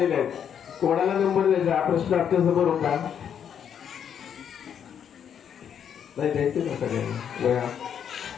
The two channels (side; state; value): right; quieter; 8.4 dB